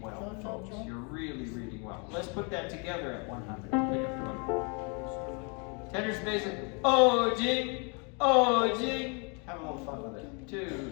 folks. You're really reading well. Let's put that together at 100. Pick up to 100. Tenors, basses. Oh, jing. Oh, jing. Have a little fun with it.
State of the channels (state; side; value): quieter; right; 34.8 dB